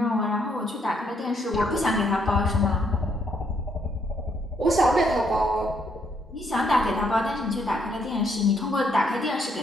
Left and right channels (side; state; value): both; normal; correlation 0.72